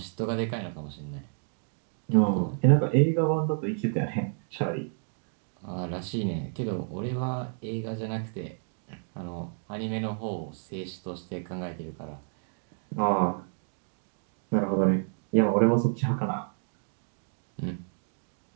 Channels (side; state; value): left; silent; digital silence